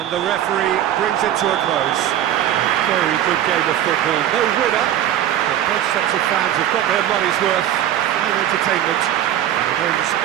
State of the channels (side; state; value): left; quieter; 11.5 dB